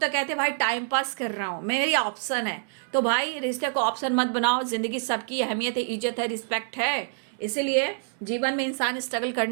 कहते हैं भाई टाइम पास कर रहा हूँ, मेरी ऑप्शन है। तो भाई रिश्ते को ऑप्शन मत बनाओ, ज़िंदगी सबकी अहमियत है, इज्जत है, रिस्पेक्ट है। इसीलिए जीवन में इंसान स्ट्रगल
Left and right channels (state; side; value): silent; left; 60 dB below the other